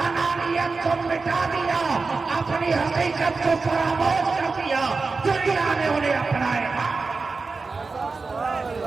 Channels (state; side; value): quieter; left; 4.1 dB